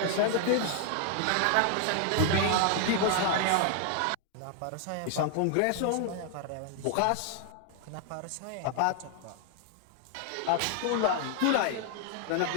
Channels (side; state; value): both; different; correlation 0.00